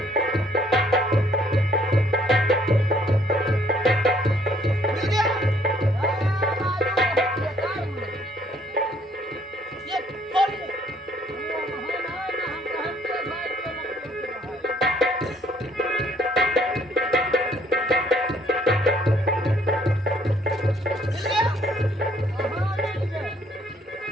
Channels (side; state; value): both; normal; correlation 0.64